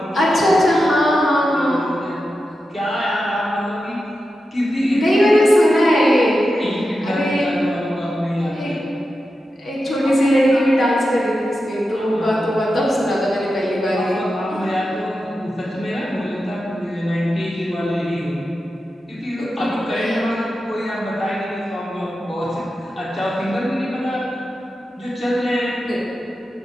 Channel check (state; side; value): normal; both; correlation 0.90